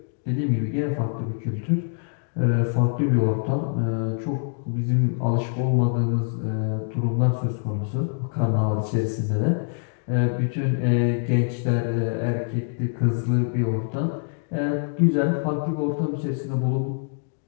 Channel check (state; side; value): silent; right; digital silence